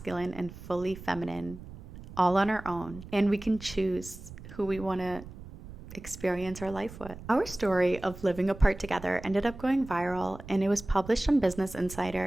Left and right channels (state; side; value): noise; right; rumble, 15 dB below the sound